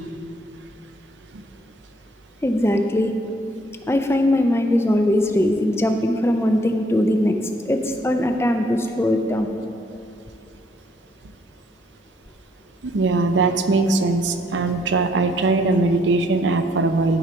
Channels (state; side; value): normal; both; correlation 0.67